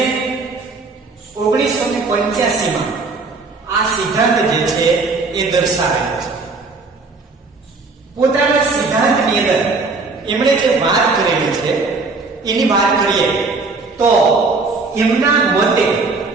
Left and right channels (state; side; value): quieter; left; 3.9 dB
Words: 1985 માં આ સિદ્ધાંત જે છે એ દર્શાવેલો છે. પોતાના સિદ્ધાંતની અંદર એમણે જે વાત કરેલી છે એની વાત કરીએ તો એમના મતે